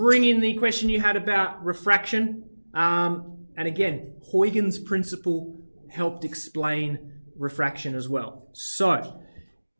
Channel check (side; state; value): both; inverted; correlation -1.00